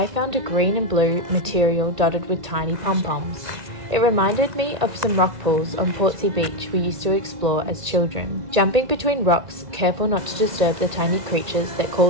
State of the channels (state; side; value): late; left; 1.9 ms